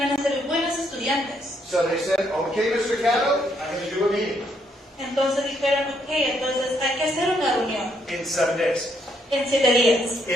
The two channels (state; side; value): normal; both; correlation 0.73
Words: a ser buenos estudiantes. So they said, okay, Mr. Catto, I'm going to do a meeting Entonces dijeron, ok, entonces hay que hacer una reunión in 7 days. en 7 días.